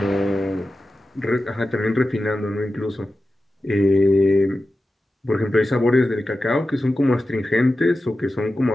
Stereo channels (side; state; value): both; normal; correlation 0.93